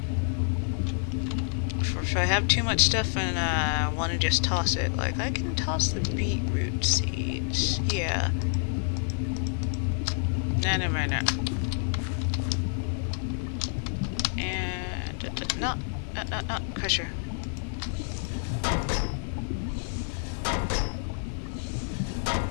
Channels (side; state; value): right; silent; digital silence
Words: If I have too much stuff and I want to just toss it, like I can toss the beetroot seeds. Yeah. No. And no, crusher.